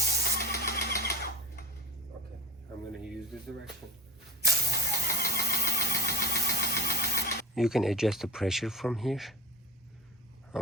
Okay, I'm gonna use this direction. You can adjust the pressure from here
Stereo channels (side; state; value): both; normal; correlation 0.33